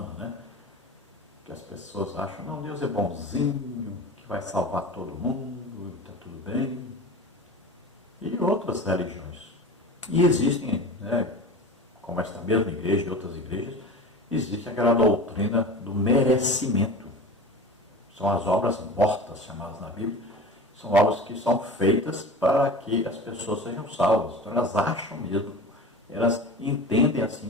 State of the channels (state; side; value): normal; both; correlation 0.35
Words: né? Que as pessoas acham, não, Deus é bonzinho, que vai salvar todo mundo, está tudo bem. E outras religiões. E existem, né, como esta mesma igreja e outras igrejas, existe aquela doutrina do merecimento. São as obras mortas, chamadas na Bíblia, são obras que são feitas para que as pessoas sejam salvas. Então elas acham mesmo, elas entendem assim,